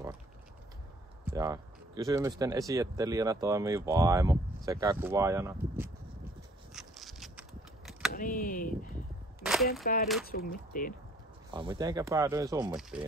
Ja kysymysten esittelijänä toimii vaimo sekä kuvaajana. No niin, miten päädyit Summittiin? Mitenkä päädyin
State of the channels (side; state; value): both; normal; correlation 0.59